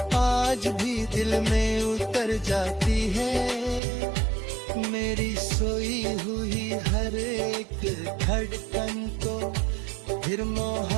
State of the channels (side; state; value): left; drops out; at 3.8 s